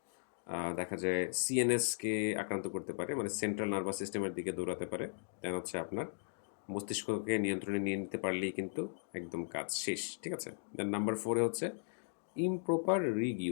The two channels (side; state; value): right; silent; digital silence